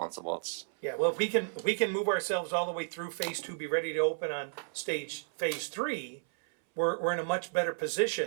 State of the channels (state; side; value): silent; left; 56 dB below the other